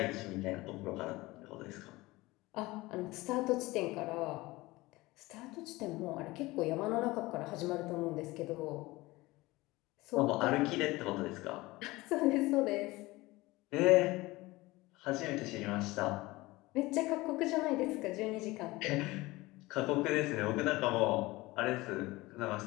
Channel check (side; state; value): right; quieter; 20.5 dB